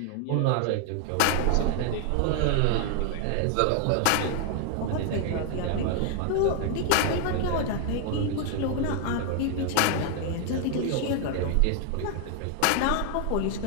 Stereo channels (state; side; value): different; both; correlation 0.00